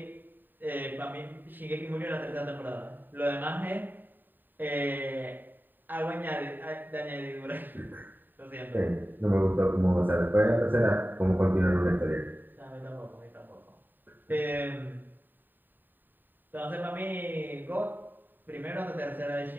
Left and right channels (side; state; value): left; late; 0.091 ms